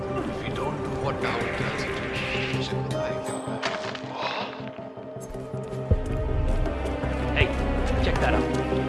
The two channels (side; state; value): both; identical; correlation 1.00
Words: if we don't do what Down tells us to, shit will like Hey, check that out.